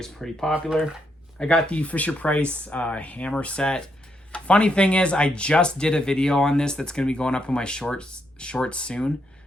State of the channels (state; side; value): normal; both; correlation 0.78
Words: pretty popular. I got the Fisher-Price hammer set. Funny thing is, I just did a video on this that's going to be going up in my shorts soon.